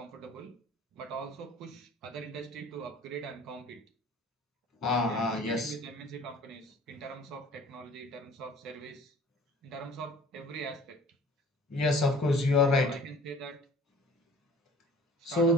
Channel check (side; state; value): both; normal; correlation 0.48